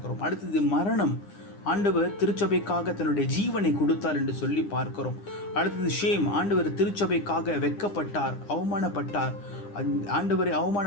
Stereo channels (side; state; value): right; late; 9.9 ms